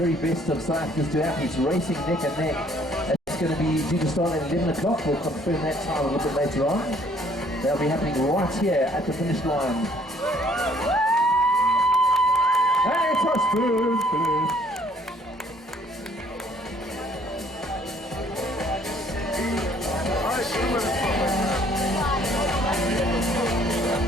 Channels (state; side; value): normal; both; correlation 0.61